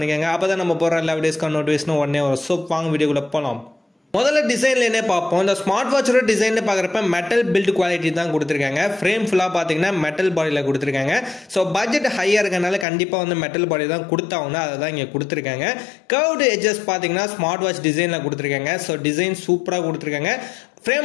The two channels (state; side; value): drops out; right; at 12.9 s